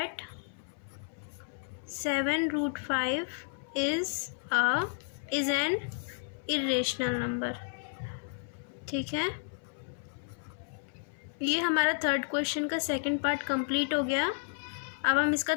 7√5 is an irrational number, ठीक है। ये हमारा थर्ड क्वेश्चन का सेकंड पार्ट कंप्लीट हो गया। अब हम इसका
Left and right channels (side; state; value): right; silent; 56 dB below the other